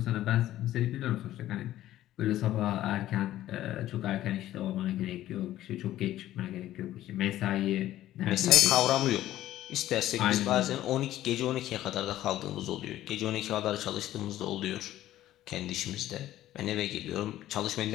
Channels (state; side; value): quieter; right; 13.8 dB